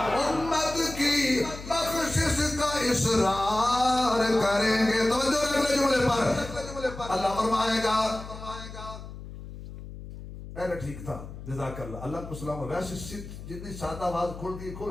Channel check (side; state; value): left; noise; hum, 12 dB below the sound